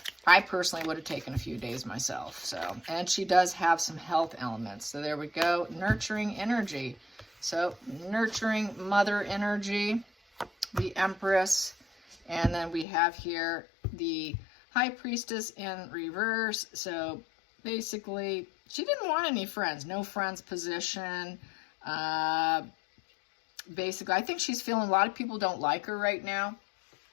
I personally would have taken a few days myself. So, and she does have some health elements. So there we go, nurturing energy. So nurturing mother energy, the Empress, and then we have here the High Priestess in reverse. So basically, she didn't want any friends. No friends position. Basically, I think she's feeling a lot of people don't like her right now.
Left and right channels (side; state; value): right; drops out; at 12.9 s